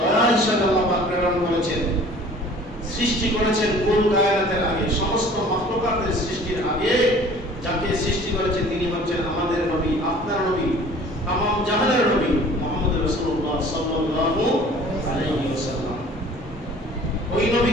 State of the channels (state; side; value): normal; both; correlation 0.48